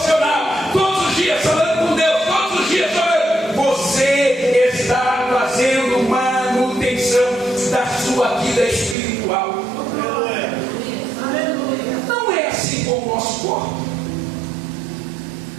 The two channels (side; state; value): left; drops out; at 9.0 s